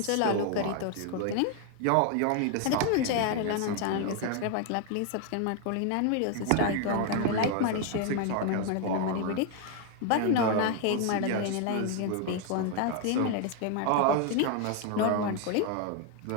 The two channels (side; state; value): both; different; correlation 0.01